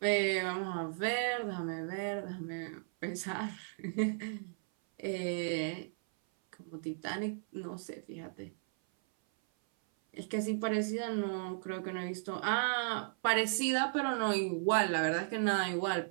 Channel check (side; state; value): left; silent; 54 dB below the other